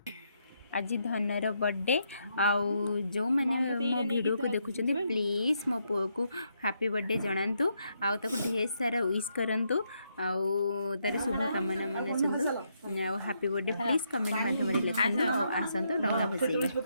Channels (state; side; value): inverted; both; correlation -0.78